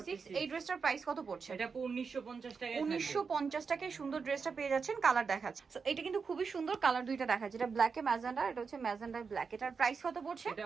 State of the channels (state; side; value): quieter; left; 5.4 dB